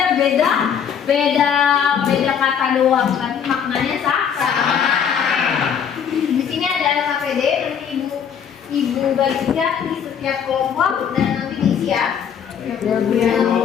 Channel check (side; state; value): right; quieter; 7.8 dB